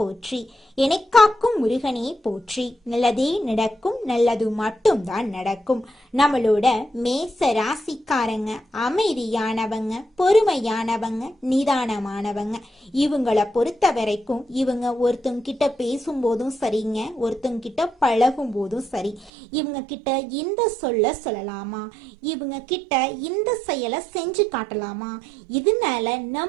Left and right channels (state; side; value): drops out; left; at 19.3 s